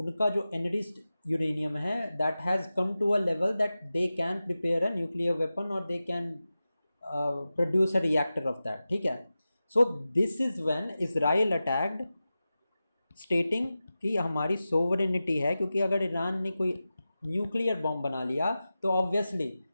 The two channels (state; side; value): inverted; both; correlation -0.94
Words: जो एनरिच्ड यूरेनियम है that has come to a level that they can prepare a nuclear weapon और they can produce a reactor of that. ठीक है. So this is when Israel attacked, stating कि हमारी sovereignty है, क्योंकि अगर ईरान ने कोई न्यूक्लियर बॉम्ब बना लिया तो obviously